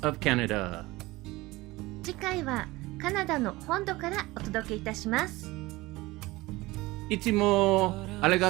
of Canada. 次回はカナダの本土からお届けいたします。いつもあり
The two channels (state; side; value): quieter; left; 20.3 dB